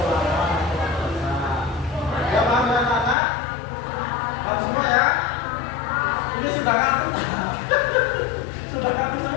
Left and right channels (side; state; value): right; drops out; at 3.2 s